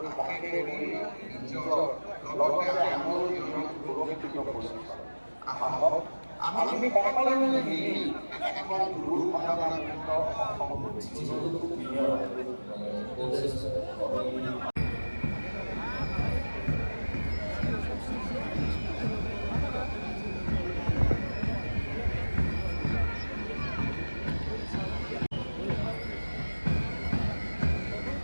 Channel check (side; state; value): both; inverted; correlation -1.00